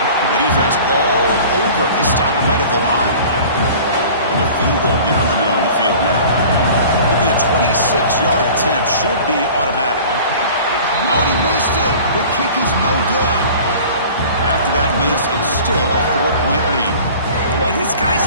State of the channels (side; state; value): both; inverted; correlation -0.43